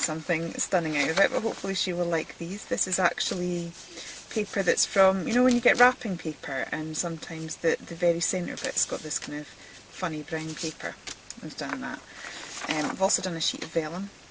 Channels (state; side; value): identical; both; correlation 1.00